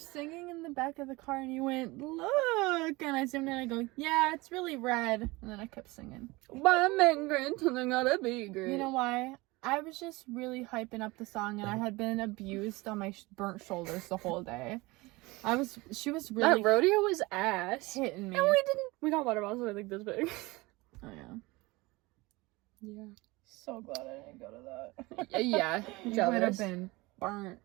singing in the back of the car and you went, look. And I zoomed in and I go, yeah, it's really red. And then I kept singing. Why I'm great and I gotta be great. You know why? I was just really hyping up the song and I had been abused on my burnt shoulders the whole day. She was really that rodeo was ass. hitting me. And we got water bottles that are like this big. Oh, yeah. Yeah. So glad I didn't go to that. Yeah. You would have Jealous. been burnt.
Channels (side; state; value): left; quieter; 22.7 dB